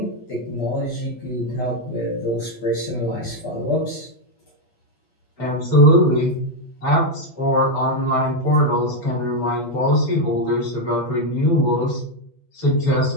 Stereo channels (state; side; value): late; right; 8.3 ms